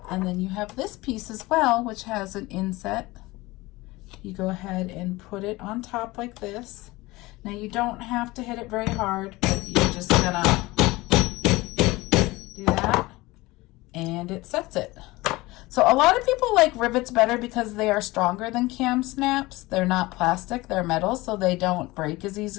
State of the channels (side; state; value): right; quieter; 20.8 dB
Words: And then you have this piece as well, which has an inset. You go ahead and put it on top like this. Now you don't have to hit it very hard, but you're just gonna do that, and it sets it. So a lot of people like rivets better because they are stronger than cam snaps. They're not plastic, they're metal, so they don't break as